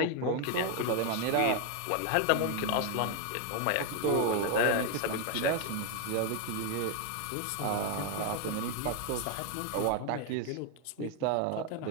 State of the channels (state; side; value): different; both; correlation 0.01